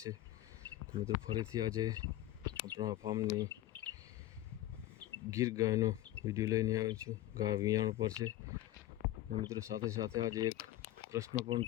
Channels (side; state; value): right; quieter; 14.7 dB